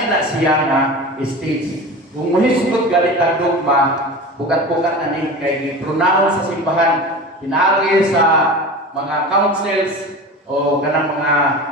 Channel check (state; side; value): normal; both; correlation 0.32